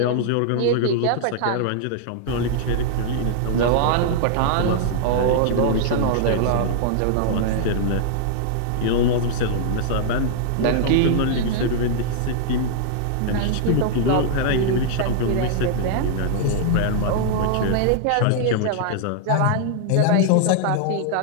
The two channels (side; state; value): both; different; correlation -0.01